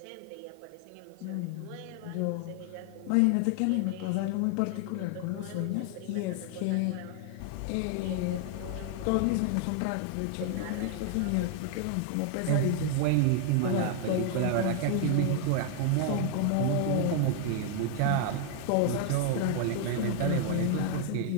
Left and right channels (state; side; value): different; both; correlation 0.00